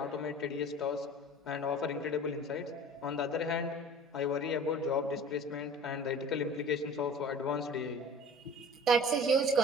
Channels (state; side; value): normal; both; correlation 0.42